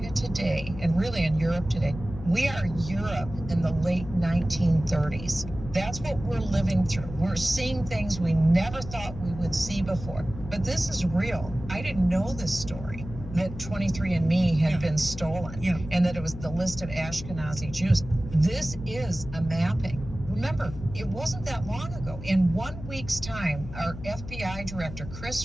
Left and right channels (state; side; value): noise; left; hum, 11 dB below the sound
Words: today, and really in Europe today, we are Europe in the late 1930s. That's what we're living through. We're seeing things we never thought we would see before. But this is real. I didn't know this story, that 23andMe had been stolen, and that it was the list of Ashkenazi Jews. This is a mapping. Remember, it wasn't that long ago. In 1 week's time, our FBI director,